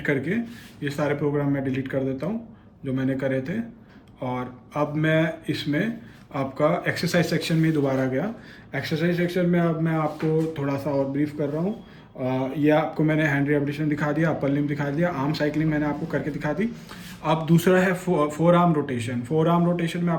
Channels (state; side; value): identical; both; correlation 1.00